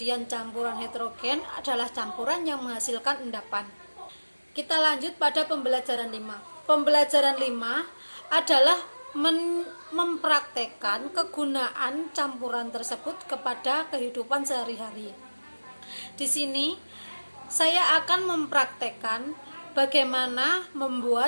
campuran heterogen adalah campuran yang menghasilkan endapan. Kita lanjut pada pembelajaran 5. Pembelajaran 5 adalah mempraktekkan kegunaan campuran tersebut kepada kehidupan sehari-hari. Di sini saya akan mempraktekkan bagaimana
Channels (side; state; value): both; inverted; correlation -1.00